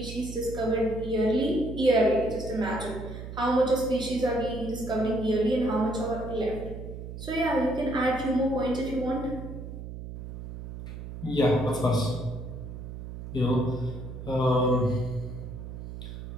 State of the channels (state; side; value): noise; right; hum, 10 dB below the sound